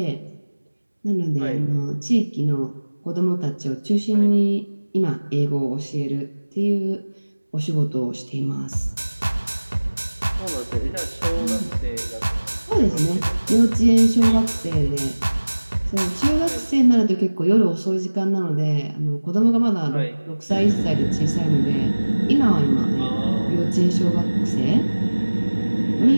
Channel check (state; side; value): inverted; both; correlation -1.00